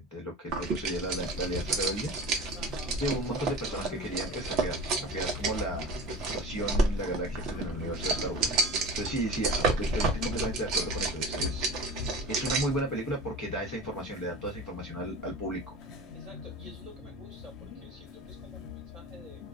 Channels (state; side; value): normal; both; correlation 0.35